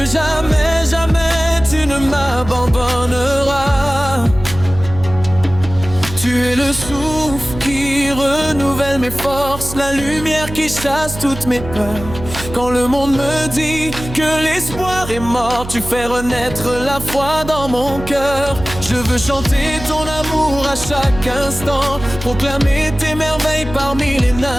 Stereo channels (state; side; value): noise; right; hum, 11 dB below the sound